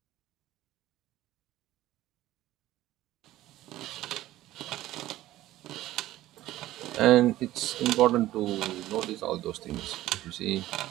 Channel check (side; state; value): left; quieter; 15.2 dB